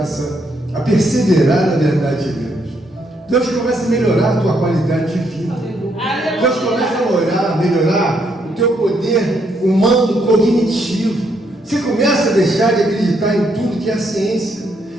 a perseverar na verdade de Deus? Deus começa a melhorar a tua qualidade de vida. Deus começa a melhorar o teu poder humano cognitivo. Você começa a deixar de acreditar em tudo que é a ciência.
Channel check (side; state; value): both; normal; correlation 0.74